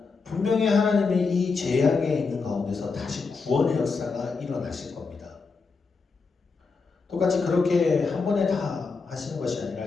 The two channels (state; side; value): quieter; right; 4.6 dB